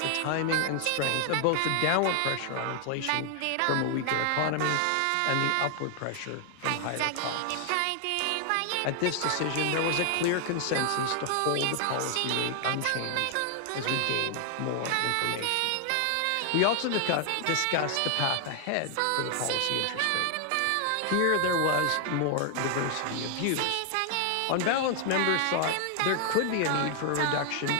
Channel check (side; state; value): both; different; correlation 0.00